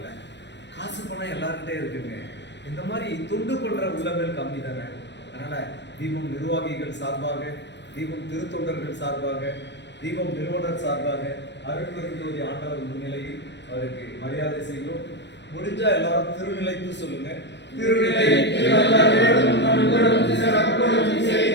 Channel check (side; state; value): right; late; 0.51 ms